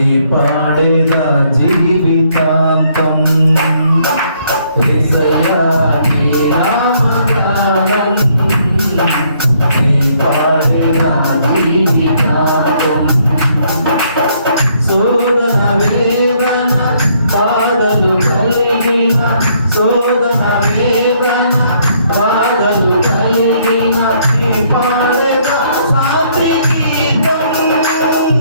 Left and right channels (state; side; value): inverted; both; correlation -0.68